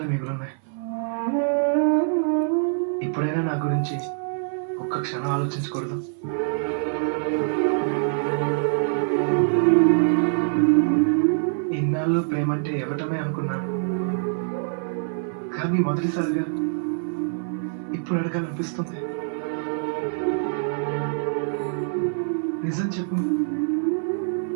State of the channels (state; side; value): silent; left; 60 dB below the other